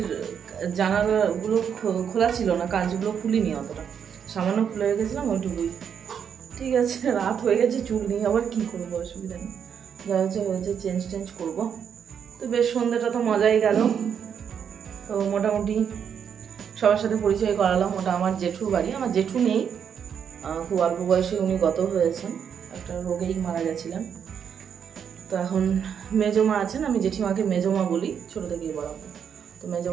জানালাগুলো খোলা ছিল না, কাঁচগুলো খুলিনি, অতটা সামান্য খুলে রেখেছিলাম ওইটুকুই। ঠিক আছে, রাত হয়ে গেছে, চুল নিয়ে আবার কি করবো, অসুবিধা নেই, যা হচ্ছে চেঞ্জ করবো। তো বেশ সন্ধ্যাটা তো মজাই গেল। তো মোটামুটি সবার সাথে পরিচয় করালাম। ওটা আমার জেঠুর বাড়ি। আমার জেঠু নেই, খুব অল্প বয়সে উনি গত হয়েছেন, একটা রোগেই মারা গেছিলেন। তো এখন মেজমা আছেন, আমি জেঠিমাকে মেজমা বলি, ছোটো থেকেই বড়। তো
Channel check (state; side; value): quieter; left; 7.7 dB